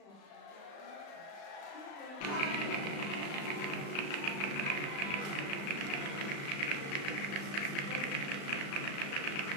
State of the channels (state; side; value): late; right; 35 ms